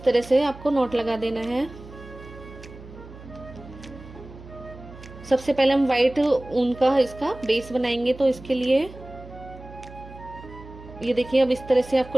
तरह से आपको नॉट लगा देना है। सबसे पहले हम वाइट ऊन का इसका बेस बनाएंगे। तो इसके लिए ये देखिए, अब इस तरह से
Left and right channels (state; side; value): noise; right; hum, 17 dB below the sound